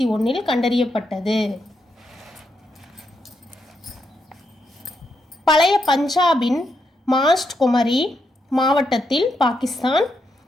கண்டறியப்பட்டது. பழைய பஞ்சாபின் மாஸ்ட் குமரி மாவட்டத்தில்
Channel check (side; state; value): both; normal; correlation 0.81